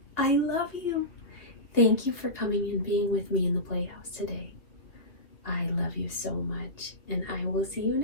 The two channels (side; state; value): right; late; 2.6 ms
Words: I love you. Thank you for coming and being with me in the playhouse today. I love you so much, and I will see you